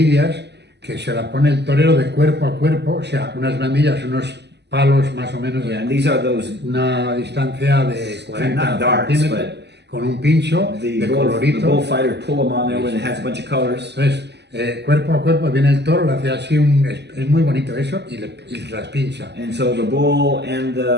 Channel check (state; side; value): late; left; 0.50 ms